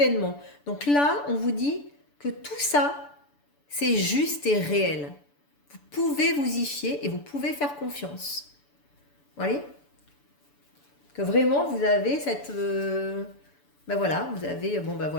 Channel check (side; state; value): right; late; 6.9 ms